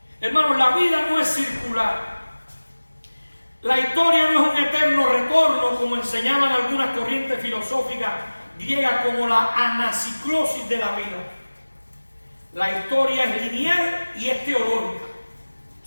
Hermanos, la vida no es circular. La historia no es un eterno retorno como enseñaban algunas corrientes filosóficas griegas como la anaciclosis de la vida. La historia es lineal y es teológica,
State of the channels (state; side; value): inverted; both; correlation -1.00